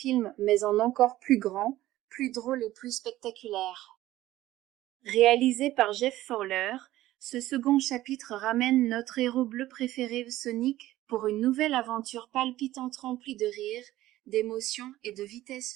mais en encore plus grand, plus drôle et plus spectaculaire. Réalisé par Jeff Fowler, ce second chapitre ramène notre héros bleu préféré Sonic pour une nouvelle aventure palpitante remplie de rire, d'émotion et de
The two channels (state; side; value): quieter; left; 15.4 dB